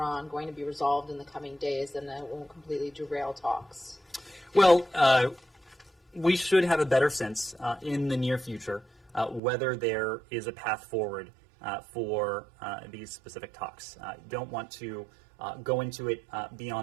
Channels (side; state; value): left; drops out; at 9.4 s